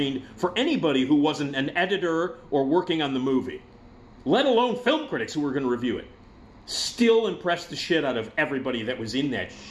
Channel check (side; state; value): both; identical; correlation 1.00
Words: for anybody who wasn't an editor or working on the movie, let alone film critics who were going to review it, still impressed the shit out of everybody that was in that